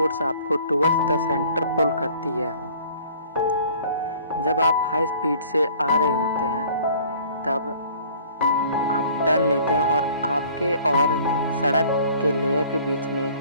आपको टुवर्ड्स द सेंटर पुल करती है। जब आप हाई स्पीड से आ रहे होते हैं तब आप टर्न लेते हैं और आपके और सड़क के लेयर के बीच में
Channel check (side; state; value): both; inverted; correlation -0.52